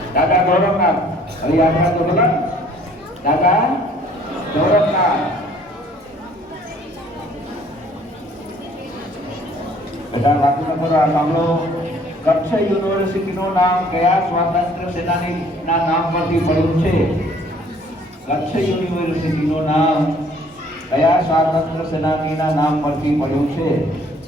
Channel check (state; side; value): normal; both; correlation 0.58